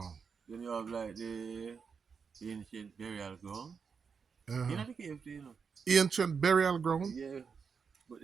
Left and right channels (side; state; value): left; quieter; 5.9 dB